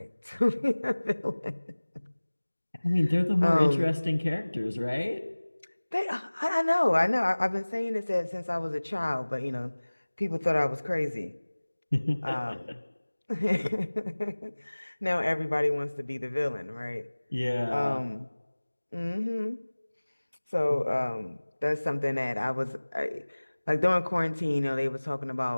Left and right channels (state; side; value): inverted; both; correlation -1.00